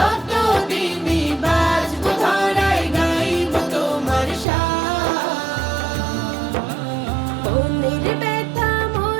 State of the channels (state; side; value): drops out; left; at 4.5 s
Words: বাঁচব ধরায় গাইব তোমার শান। মনের ব্যথা